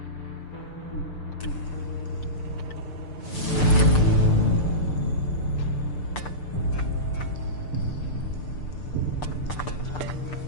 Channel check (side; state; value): right; late; 6.8 ms